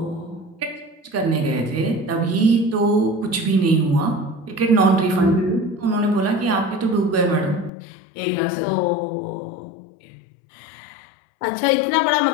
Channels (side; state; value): right; drops out; at 7.7 s